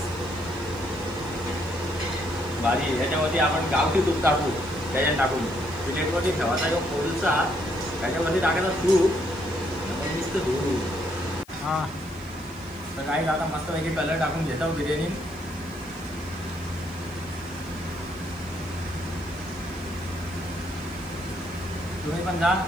भारी. याच्यामध्ये आपण गावठी तूप टाकू, त्याच्यात टाकून प्लेटवरती ठेवायचा जो कोळसा त्याच्यावरती टाकायचा तूप नुसतं धुरू. हां तर काही आता मस्तपैकी कलर टाकून घेतो बिर्याणी. तुम्ही पण जा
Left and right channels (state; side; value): noise; left; hiss, 26 dB below the sound